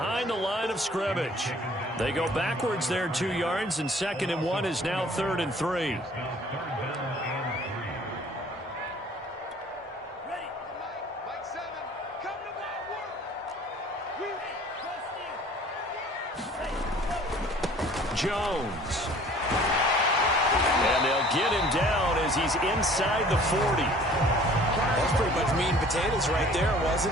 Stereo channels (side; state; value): both; normal; correlation 0.51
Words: the line of scrimmage. They go backwards there 2 yards, and 2nd and 1 is now 3rd and 3. Jones. And they'll get him down as he's inside the 40. That's pretty much meat and potatoes right there,